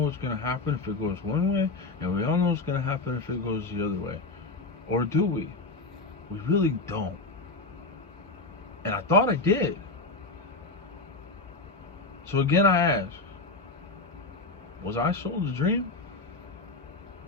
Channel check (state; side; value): quieter; right; 3.5 dB